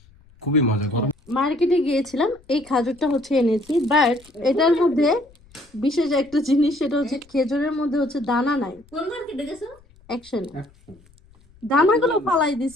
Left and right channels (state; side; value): noise; left; rumble, 28 dB below the sound